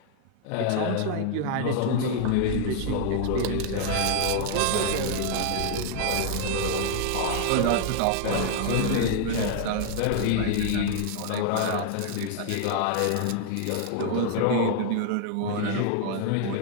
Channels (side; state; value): both; different; correlation 0.00